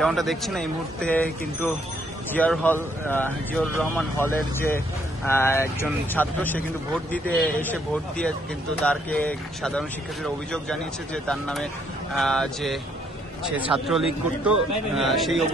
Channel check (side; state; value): both; normal; correlation 0.69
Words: দেখছেন এই মুহূর্তে কিন্তু জিয়াউর রহমান হলের যে একজন ছাত্র, সে কিন্তু ভোট দিতে এসে ভোট দিয়ে কিন্তু তারকে সাধারণ শিক্ষার্থীরা অভিযোগ জানিয়েছে যে তার নামে যে সে ছাত্রলীগ করত, সেই